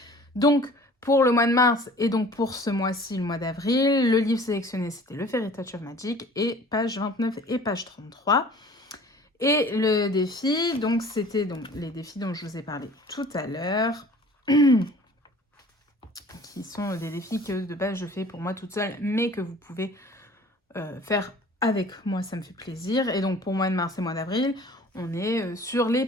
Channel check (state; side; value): normal; both; correlation 0.48